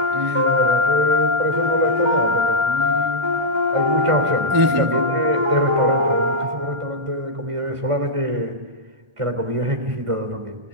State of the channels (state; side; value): late; left; 1.4 ms